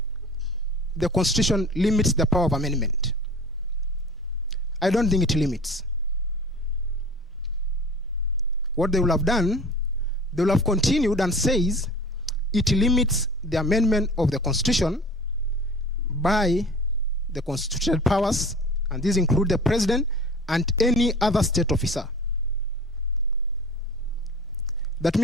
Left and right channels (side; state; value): both; normal; correlation 0.41